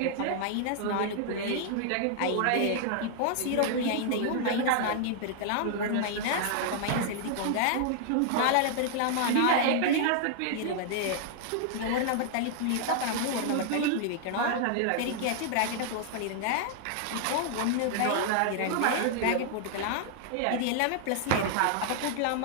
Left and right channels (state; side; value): different; both; correlation 0.00